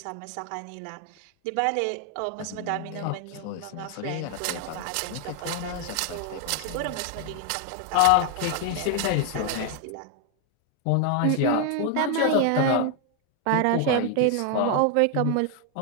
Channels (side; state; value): both; different; correlation 0.00